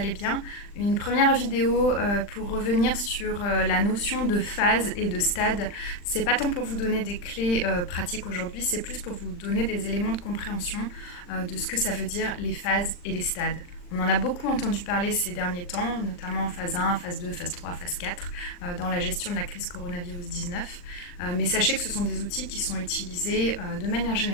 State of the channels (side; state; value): right; late; 40 ms